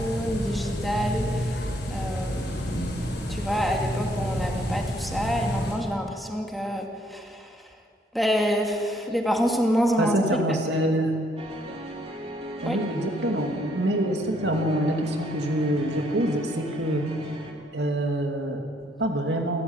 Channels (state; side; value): normal; both; correlation 0.68